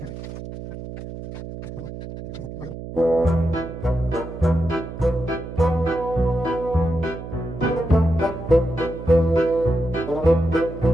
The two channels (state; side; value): noise; right; hum, 10 dB below the sound